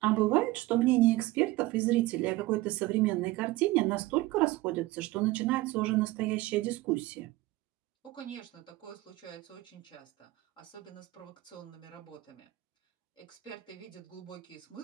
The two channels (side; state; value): left; quieter; 18.8 dB